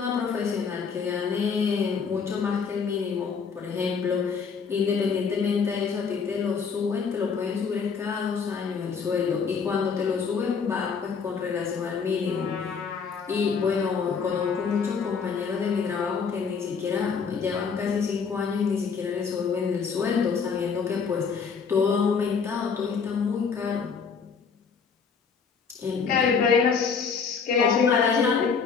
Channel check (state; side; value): quieter; right; 5.8 dB